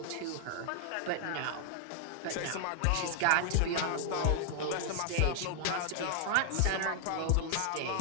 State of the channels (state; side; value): different; both; correlation 0.00